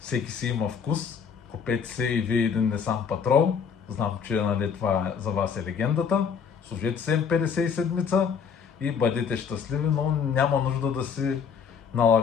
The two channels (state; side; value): quieter; right; 6.7 dB